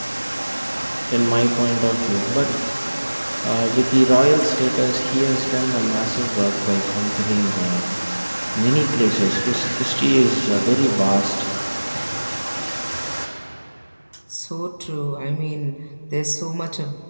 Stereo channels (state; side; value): inverted; both; correlation -1.00